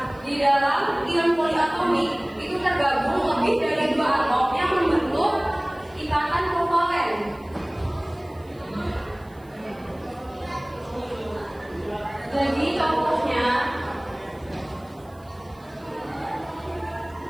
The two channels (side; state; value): right; noise; hiss, 30 dB below the sound